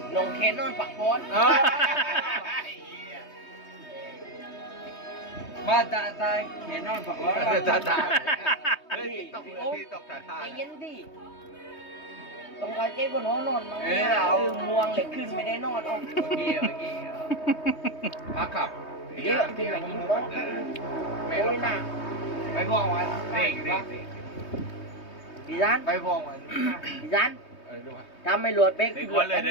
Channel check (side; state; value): right; late; 3.2 ms